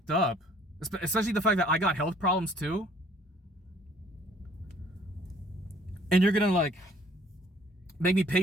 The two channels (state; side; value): normal; both; correlation 0.58